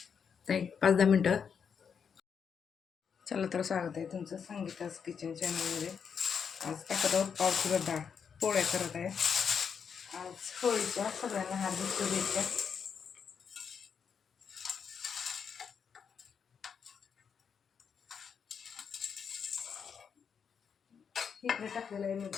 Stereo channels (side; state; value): right; quieter; 6.8 dB